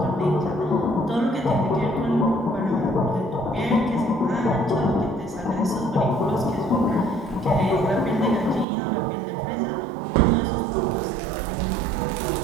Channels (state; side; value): drops out; left; at 8.7 s